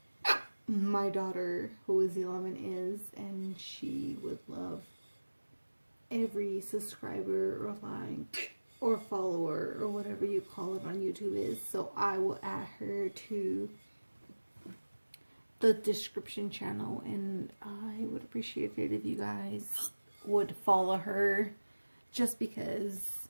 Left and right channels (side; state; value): both; inverted; correlation -1.00